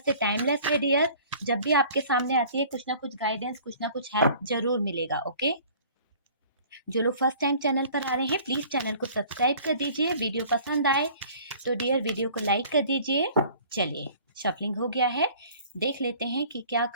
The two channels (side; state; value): both; inverted; correlation -0.50